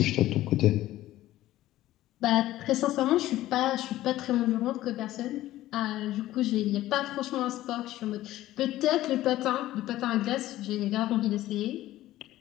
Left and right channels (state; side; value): quieter; right; 15.1 dB